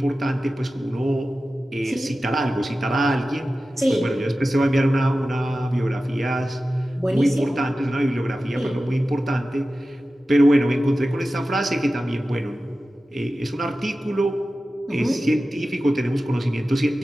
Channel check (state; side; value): normal; both; correlation 0.95